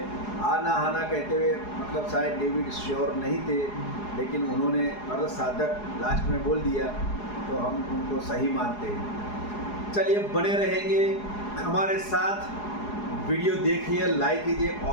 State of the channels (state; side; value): late; right; 4.8 ms